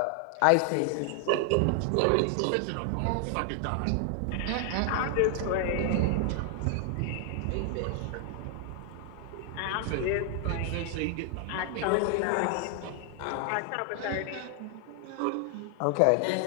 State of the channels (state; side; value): different; both; correlation 0.00